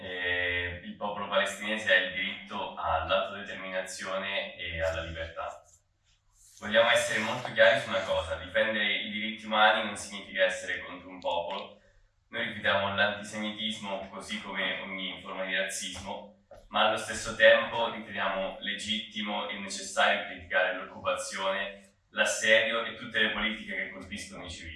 popolo palestinese ha il diritto all'autodeterminazione e alla libertà. Vogliamo essere molto chiari su una cosa: difendere i diritti umani non significa essere contro un popolo. Noi rifiutiamo l'antisemitismo così come ogni forma di razzismo, ma allo stesso tempo riteniamo legittimo e necessario criticare l'occupazione, l'assedio e tutte le politiche che colpiscono i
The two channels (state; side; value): identical; both; correlation 1.00